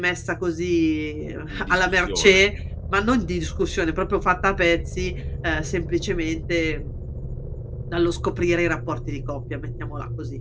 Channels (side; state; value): both; identical; correlation 1.00